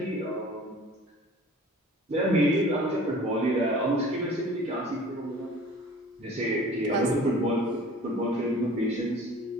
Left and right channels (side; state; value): both; normal; correlation 0.46